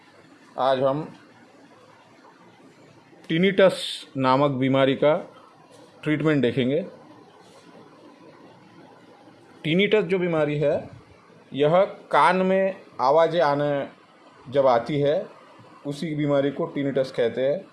आज हम टिनिटस नामक बीमारी का ट्रीटमेंट देखेंगे। टिनिटस जो बीमारी है, यह कान में आवाज़ें आने जब आती है उसी बीमारी को टिनिटस कहते हैं।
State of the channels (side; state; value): both; identical; correlation 1.00